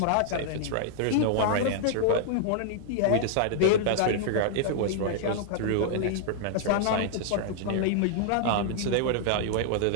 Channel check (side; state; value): both; different; correlation -0.01